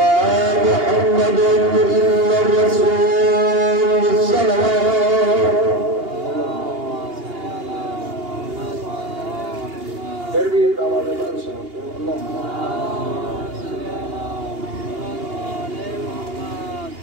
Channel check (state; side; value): late; left; 2.8 ms